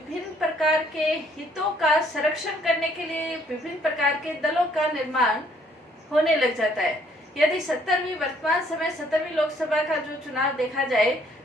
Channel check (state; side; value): normal; both; correlation 0.64